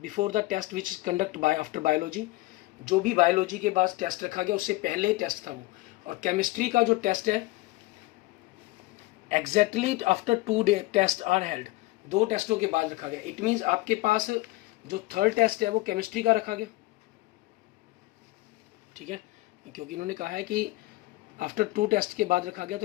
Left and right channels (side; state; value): right; quieter; 19.8 dB